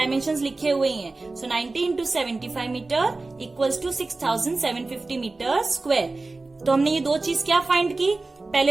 लिखे हुए हैं। So 90 into 75 metre equals to 6750 metre square. तो हमने ये 2 चीज क्या फाइंड की,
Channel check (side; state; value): left; quieter; 3.4 dB